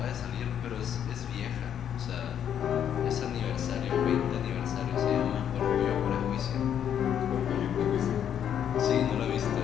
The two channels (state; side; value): quieter; right; 9.2 dB